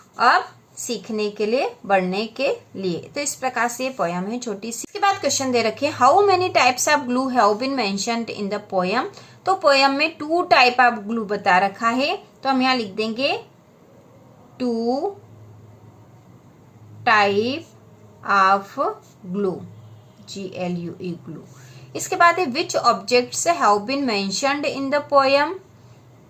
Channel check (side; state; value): both; identical; correlation 1.00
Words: अब सीखने के लिए, बढ़ने के लिए। तो इस प्रकार से ये पोयम है छोटी सी। इसके बाद क्वेश्चन दे रखे, how many types of glue have been mentioned in the poem. तो पोयम में 2 टाइप ऑफ ग्लू बता रखा है। तो हम यहाँ लिख देंगे 2 type of glue, GLUE, glue. इसके बाद है, which objects have been mentioned in the poem.